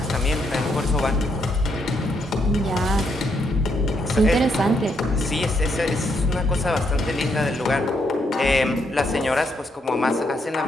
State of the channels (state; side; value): normal; both; correlation 0.76